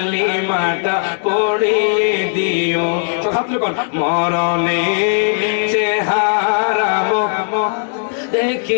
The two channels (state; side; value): silent; right; digital silence